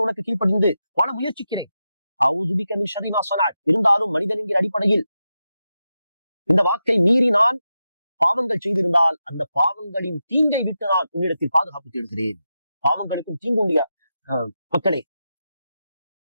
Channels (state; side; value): inverted; both; correlation -0.89